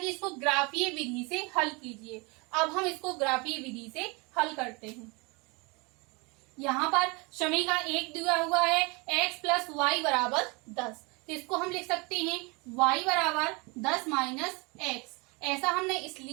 इसको ग्राफीय विधि से हल कीजिए। अब हम इसको ग्राफीय विधि से हल करते हैं। यहाँ पर समीकरण 1 दिया हुआ है x प्लस वाई बराबर 10, तो इसको हम लिख सकते हैं y बराबर 10 माइनस x। ऐसा हमने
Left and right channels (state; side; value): quieter; left; 28.5 dB